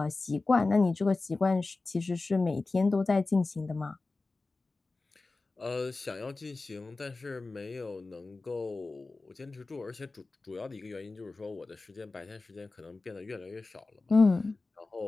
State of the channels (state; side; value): quieter; right; 3.5 dB